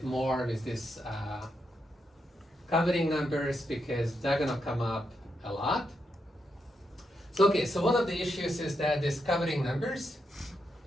more with this covering numbers, because they're gonna come up a lot. So okay, so one of the issues is that these covering numbers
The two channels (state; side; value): normal; both; correlation 0.82